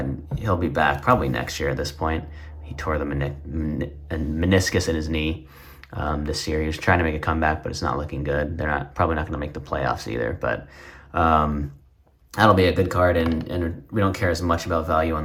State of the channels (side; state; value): both; identical; correlation 1.00